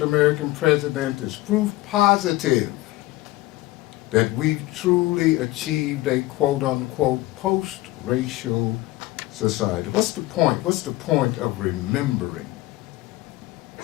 president is proof positive that we've truly achieved a quote-unquote post-racial society. What's the point? What's the point of remembering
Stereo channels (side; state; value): right; quieter; 18.3 dB